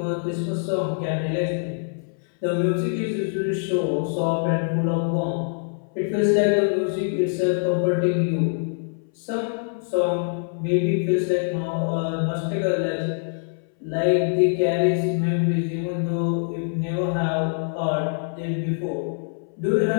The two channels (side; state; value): right; silent; 62 dB below the other